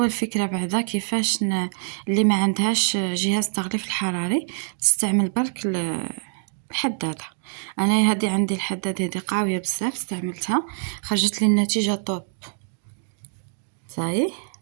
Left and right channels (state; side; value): silent; left; digital silence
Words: فكره بعدا كيفاش اللي ما عندهاش جهاز تغليف الحراري تستعمل برك الحداده. انا هذه عندي الحداده هذه قويه بزاف، استعملتها خرجت لي النتيجه طوب صحيح.